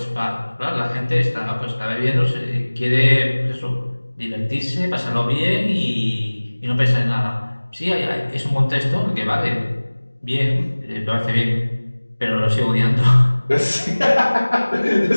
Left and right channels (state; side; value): inverted; both; correlation -1.00